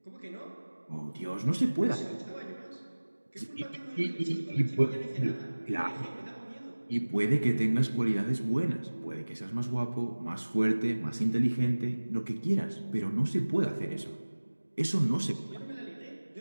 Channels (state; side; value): inverted; both; correlation -1.00